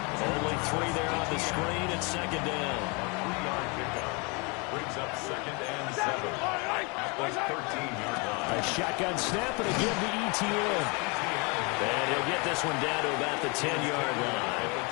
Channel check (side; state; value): right; quieter; 30.7 dB